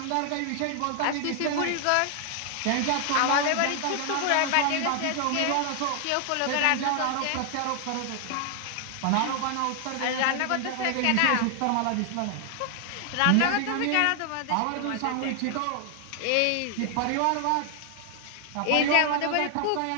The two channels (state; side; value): different; both; correlation 0.00